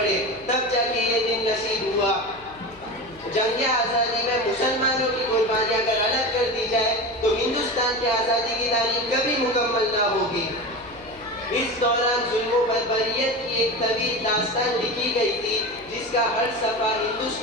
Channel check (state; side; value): noise; left; hum, 24 dB below the sound